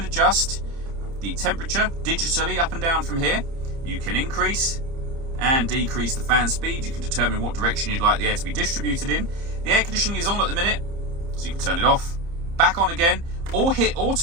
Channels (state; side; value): late; left; 30 ms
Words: adjust the temperature digitally up and down from here. You can increase and decrease the fan speed. You can determine what direction you'd like the air to be distributed in. The air conditioning is on at the minute, so you can turn it off, back on again, or hit